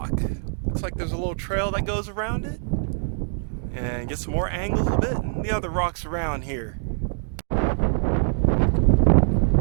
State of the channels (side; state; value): left; silent; digital silence